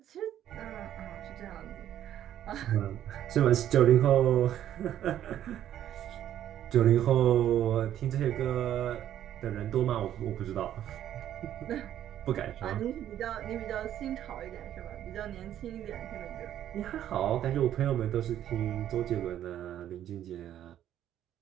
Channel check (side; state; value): left; quieter; 11.3 dB